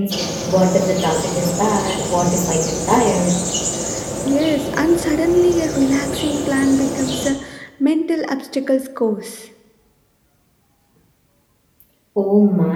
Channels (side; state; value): both; identical; correlation 1.00